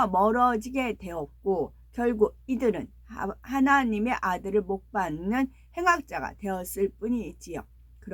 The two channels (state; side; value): identical; both; correlation 1.00